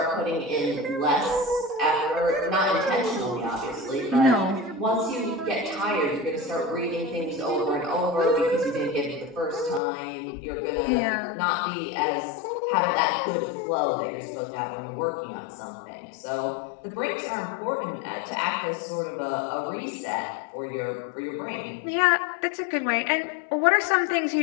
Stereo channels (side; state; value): right; drops out; at 9.8 s